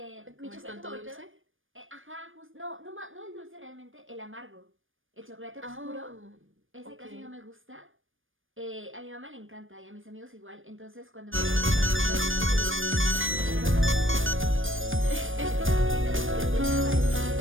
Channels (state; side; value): late; left; 0.58 ms